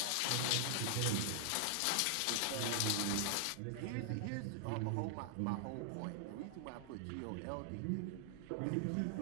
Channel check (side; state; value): both; different; correlation 0.00